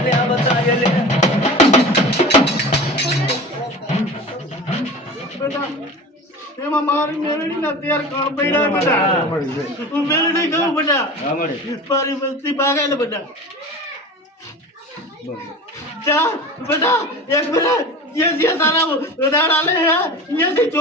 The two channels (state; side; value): normal; both; correlation 0.34